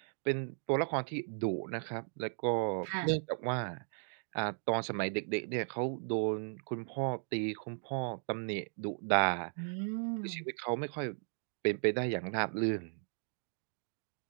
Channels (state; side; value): silent; left; digital silence